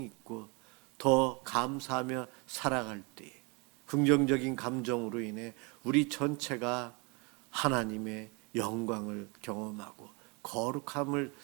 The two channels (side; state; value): left; quieter; 30.8 dB